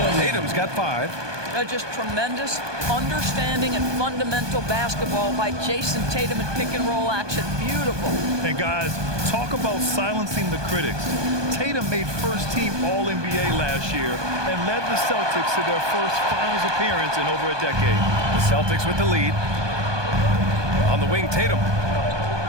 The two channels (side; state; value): left; late; 1.2 ms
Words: Tatum's got 5. Just tremendous understanding and fundamental basketball by Jason Tatum in pick-and-roll action. Beautiful. And guys, talk about silencing the critics. Tatum made first-team All-NBA last year and led the Celtics to their first finals appearance in over a decade. The Celtics with the lead. On the wing, Tatum.